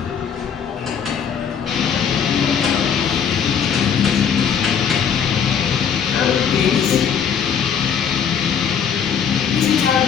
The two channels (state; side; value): quieter; right; 7.5 dB